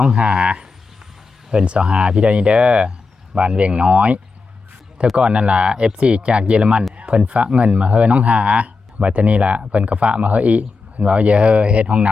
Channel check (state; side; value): quieter; right; 4.3 dB